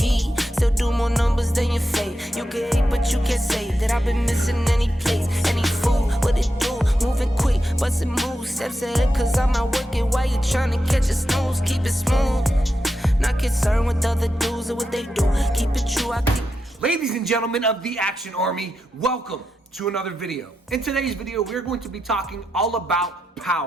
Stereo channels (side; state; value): both; normal; correlation 0.87